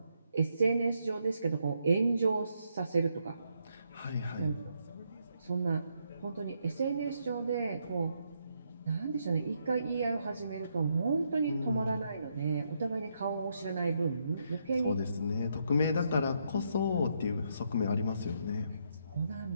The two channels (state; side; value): inverted; both; correlation -0.77